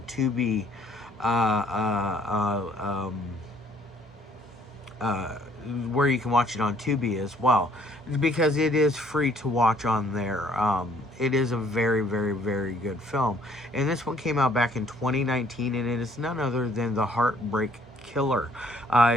uh, uh, uh, where you can watch it on Tubi as well, because it is free to watch on there. It is a very, very, very good film, and this one came out back in 2019, and it is none other than the Hart-Break Killer. It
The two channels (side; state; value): both; normal; correlation 0.62